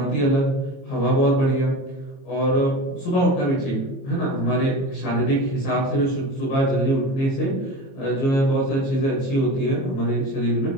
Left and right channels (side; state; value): right; late; 22 ms